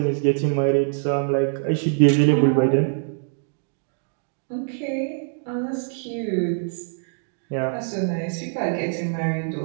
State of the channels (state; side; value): silent; left; 63 dB below the other